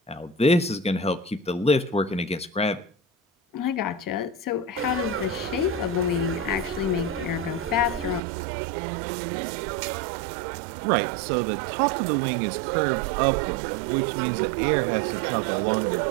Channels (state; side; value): drops out; left; at 8.2 s